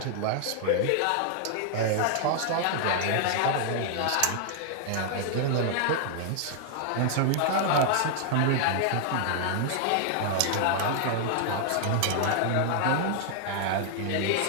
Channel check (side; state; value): both; different; correlation 0.00